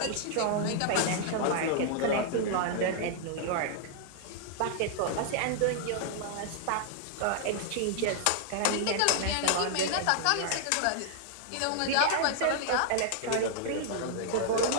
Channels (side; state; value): both; different; correlation -0.01